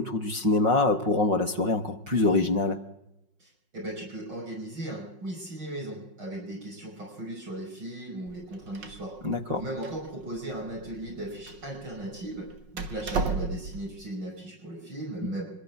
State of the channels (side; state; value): left; late; 5.5 ms